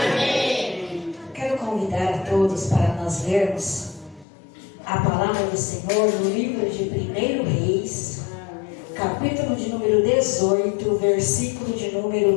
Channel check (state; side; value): drops out; right; at 4.2 s